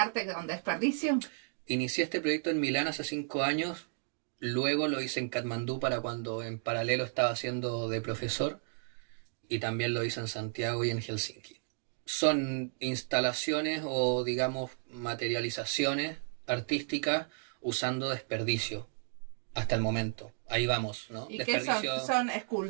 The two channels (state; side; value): silent; left; 56 dB below the other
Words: con desperdicio. Inicié este proyecto en Milán hace 5 años. Luego lo hice en Katmandú para cuando en paralelo estaba haciendo de profesor y también lo hice en Santiago y en Helsinki. Son instalaciones o digamos materializaciones artísticas usando desperdicio hasta el momento. Ahí vamos, ¿no? ¿Y desperdicio... qué son